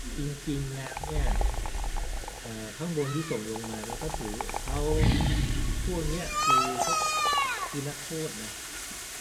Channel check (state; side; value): identical; both; correlation 1.00